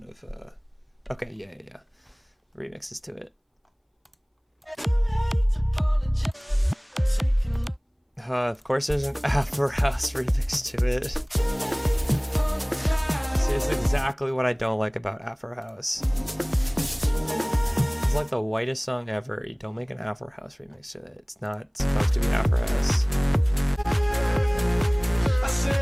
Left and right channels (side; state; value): both; identical; correlation 1.00